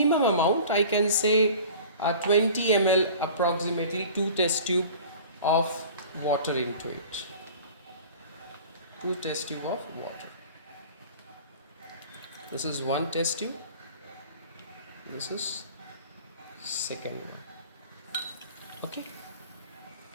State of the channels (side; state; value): both; inverted; correlation -0.42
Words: amount, I can say 20 ml approximately, 2 test tube of water into it. 2 test tube of water. This is 1 test tube. This is second one. Okay.